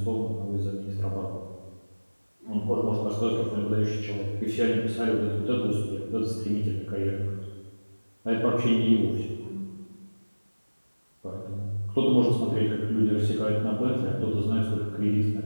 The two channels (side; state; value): both; inverted; correlation -1.00